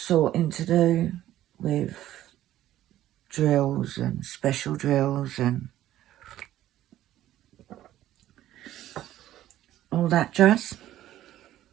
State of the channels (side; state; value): left; quieter; 13.3 dB